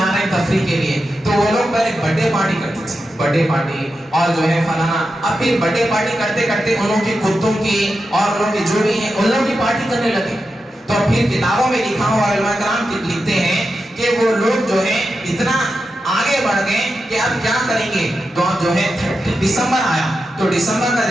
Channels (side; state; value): both; normal; correlation 0.89